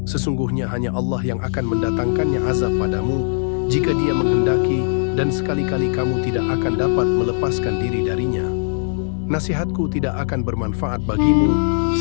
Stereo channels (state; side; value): silent; right; digital silence